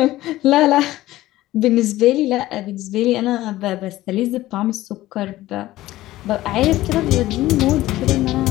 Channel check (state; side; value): quieter; right; 16.2 dB